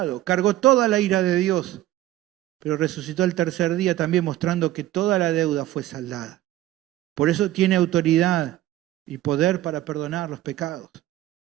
cargó toda la ira de Dios, pero resucitó el tercer día también mostrando que toda la deuda fue saldada. Por eso tiene autoridad y poder para perdonar los pecados.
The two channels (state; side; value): quieter; left; 14.8 dB